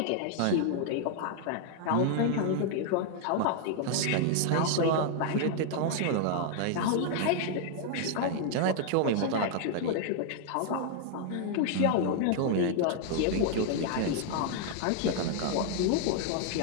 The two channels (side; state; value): both; different; correlation 0.00